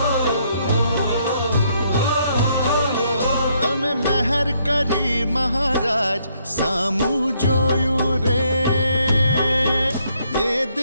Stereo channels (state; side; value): inverted; both; correlation -0.71